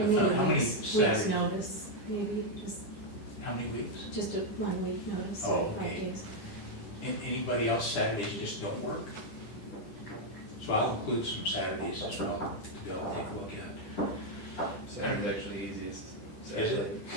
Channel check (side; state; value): right; late; 10 ms